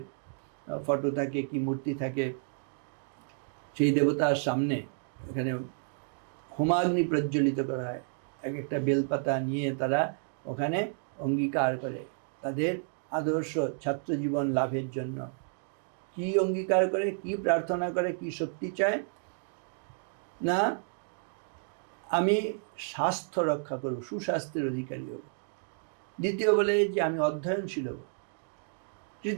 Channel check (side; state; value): left; silent; digital silence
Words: ফটো থাকে, কি মূর্তি থাকে, সেই দেবতার সামনে এখানে হোমাগ্নি প্রজ্বলিত করা হয়। এক একটা বেলপাতা নিয়ে তারা ওখানে অঙ্গীকার করে তাদের আদর্শ ছাত্র জীবন লাভের জন্য। কি অঙ্গীকার করে, কি প্রার্থনা করে, কি শক্তি চায়? না, আমি স্বাস্থ্য রক্ষা করব, সুস্বাস্থ্যের অধিকারী হব। দ্বিতীয় বলে যে আমি অধ্যয়নশীল হব।